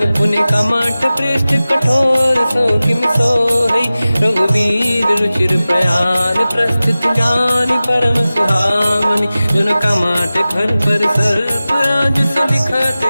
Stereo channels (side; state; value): both; inverted; correlation -0.96